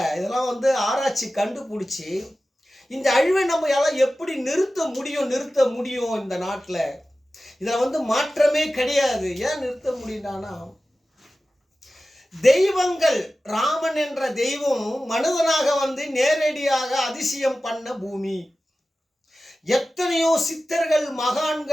இதெல்லாம் வந்து ஆராய்ச்சி கண்டுபிடிச்சி இந்த அழிவை நம்ம எல்லாம் எப்படி நிறுத்த முடியும் இந்த நாட்டில். இதில் வந்து மாற்றமே கிடையாது. ஏன் நிறுத்த முடியும்னா, தெய்வங்கள், ராமன் என்ற தெய்வம் மனிதனாக வந்து நேரடியாக அதிசயம் பண்ண பூமி. எத்தனையோ சித்தர்கள்,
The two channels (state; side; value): normal; both; correlation 0.95